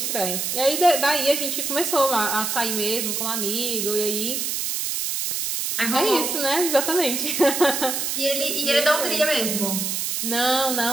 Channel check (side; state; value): right; noise; hiss, 1 dB below the sound